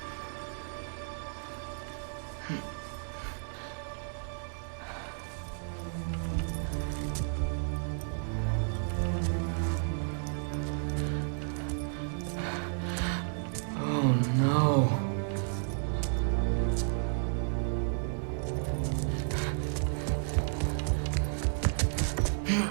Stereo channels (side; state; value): left; silent; 56 dB below the other